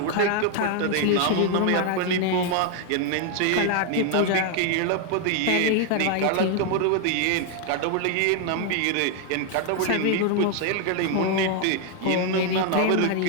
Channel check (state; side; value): different; both; correlation 0.00